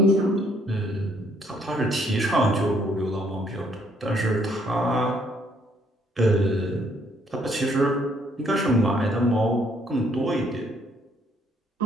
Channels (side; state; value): both; normal; correlation 0.67